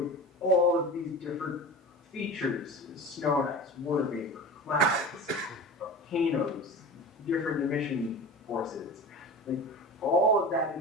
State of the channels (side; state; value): both; normal; correlation 0.32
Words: all of these different features, snow and ice, water vapor, clouds, volcanoes, different emission forces. Like, all of that